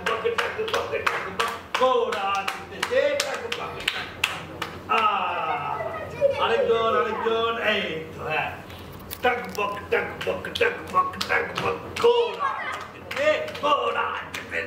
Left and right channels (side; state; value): both; identical; correlation 1.00